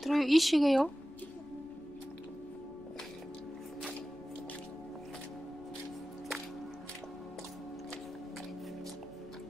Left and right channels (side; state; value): left; noise; rumble, 24 dB below the sound